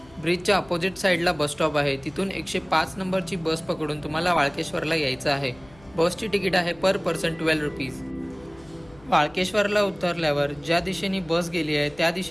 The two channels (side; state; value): left; noise; hum, 25 dB below the sound